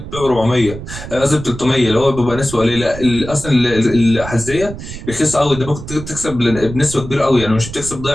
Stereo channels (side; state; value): right; noise; rumble, 11 dB below the sound